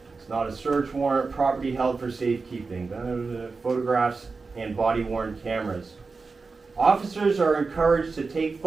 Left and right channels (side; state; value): left; quieter; 4.3 dB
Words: It's not a search warrant. Property held for safekeeping. Photographs and body-worn cameras. Officers are encouraged to take